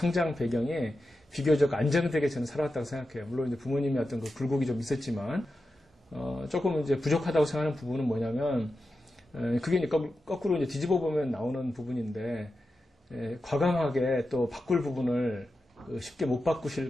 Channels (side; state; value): both; normal; correlation 0.91